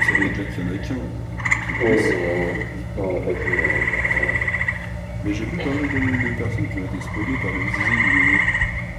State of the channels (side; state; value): both; identical; correlation 1.00